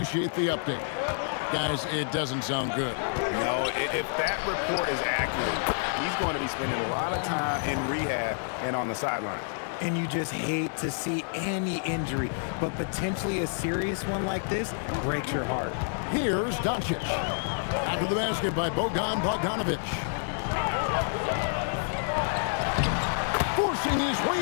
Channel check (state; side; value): silent; right; digital silence